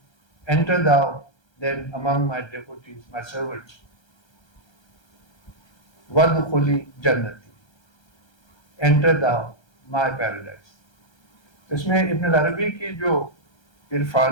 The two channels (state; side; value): late; right; 1.3 ms